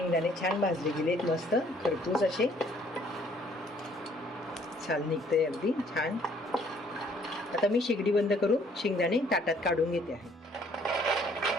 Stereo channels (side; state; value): both; normal; correlation 0.61